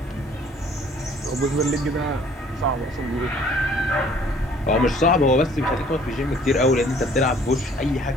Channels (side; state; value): both; normal; correlation 0.56